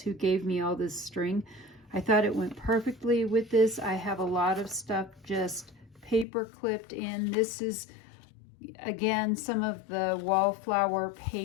gave me all this string. I thought it went perfectly with this. I have a lot of stuff just paper clipped in. This is, again, some of the Wallflower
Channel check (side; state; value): right; drops out; at 6.2 s